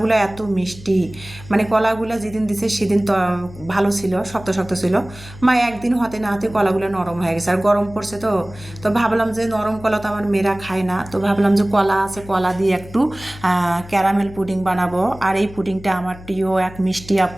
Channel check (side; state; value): left; noise; hum, 17 dB below the sound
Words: এত মিষ্টি, মানে কলাগুলো যেদিন দিছে সেদিন তো ভালো ছিল, শক্ত শক্ত ছিল। মা একদিন হতে না হতে কলাগুলো নরম হয়ে গেছে, আর গরম পড়ছে। তো ভাবলাম যে নরম কলা তো আমার মেয়েরা খায় না, তো ভাবলাম যে কলা আছে, কলা দিয়ে একটু ক্যারামেল পুডিং বানাবো। আর এই পুডিংটা আমার প্রিয় এক মিষ্টি